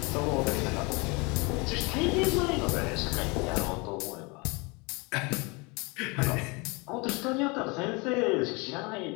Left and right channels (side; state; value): right; quieter; 28.1 dB